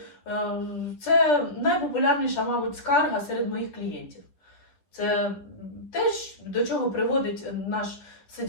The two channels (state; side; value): late; right; 10 ms